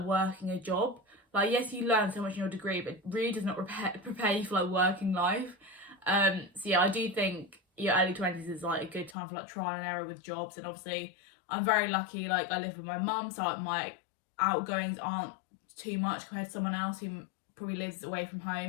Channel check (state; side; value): drops out; right; at 9.2 s